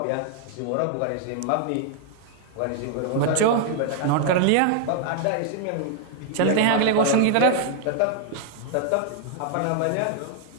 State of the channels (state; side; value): different; both; correlation 0.00